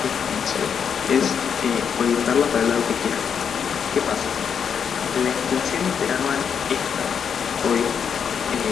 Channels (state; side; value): quieter; right; 7.3 dB